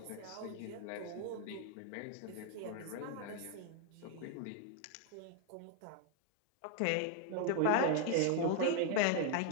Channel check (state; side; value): different; both; correlation 0.00